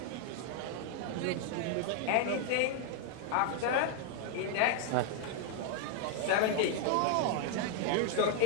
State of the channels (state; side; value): different; both; correlation 0.00